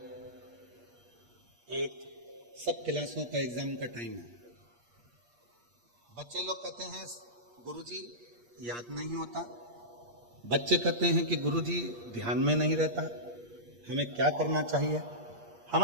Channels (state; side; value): late; left; 8.4 ms